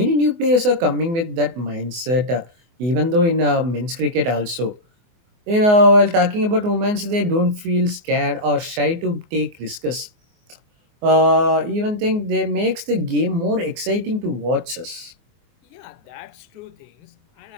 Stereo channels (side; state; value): left; late; 24 ms